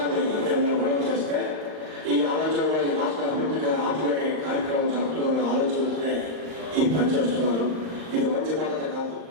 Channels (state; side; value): late; left; 39 ms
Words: గొడవ చేస్తే ఈ ఆలోచనలో ఈ రాష్ట్ర అభివృద్ధికి ఆపే కార్యక్రమం జరుగుతున్న ఆలోచనలనే ఈ పని చేస్తున్నారు. ఇది మంచి పద్ధతి కాదు.